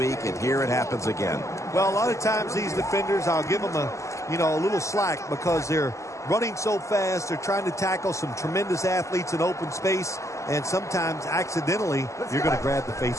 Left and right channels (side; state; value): right; late; 0.15 ms